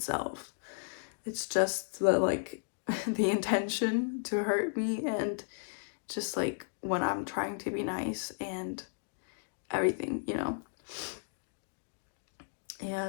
It's just the, like, the intention to hurt me, and just, like, when I'm trying to be nice and everything, you know?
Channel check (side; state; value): right; silent; digital silence